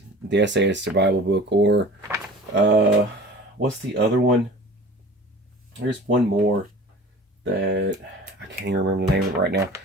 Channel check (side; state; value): both; normal; correlation 0.41